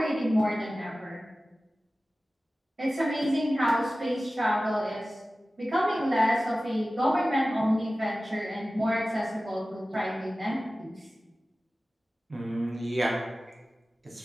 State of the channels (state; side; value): normal; both; correlation 0.96